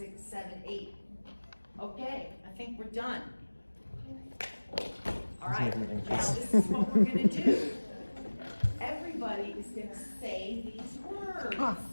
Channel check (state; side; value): inverted; both; correlation -1.00